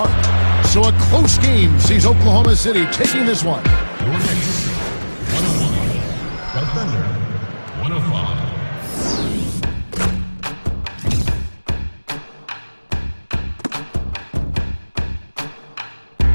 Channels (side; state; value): both; inverted; correlation -1.00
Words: So a close game sees Oklahoma City taking this one.